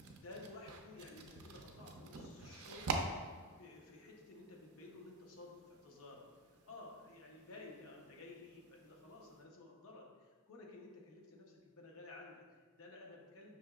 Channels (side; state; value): both; normal; correlation 0.04